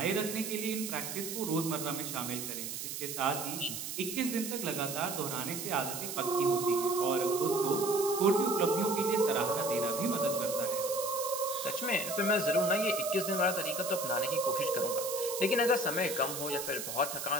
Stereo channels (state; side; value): noise; right; hiss, 6 dB below the sound